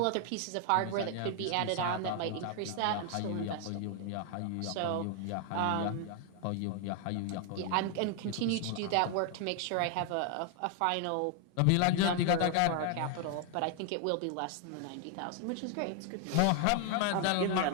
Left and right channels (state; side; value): different; both; correlation 0.00